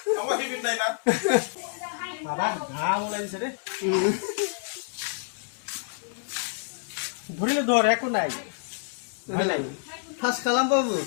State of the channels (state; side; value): silent; right; 60 dB below the other